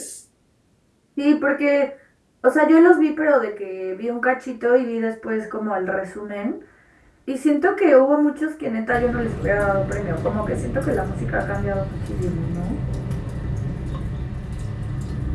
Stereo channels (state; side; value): identical; both; correlation 1.00